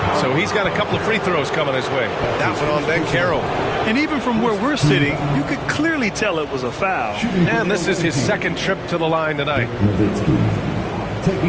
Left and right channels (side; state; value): both; identical; correlation 1.00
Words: so he's got a couple of free throws coming his way. That one on Banchero. And even from where we're sitting, you could clearly tell it was a foul. And this is his second trip to the line tonight. Nowitzki